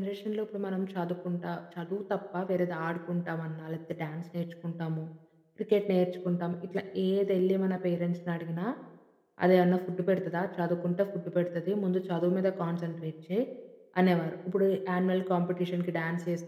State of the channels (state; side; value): identical; both; correlation 1.00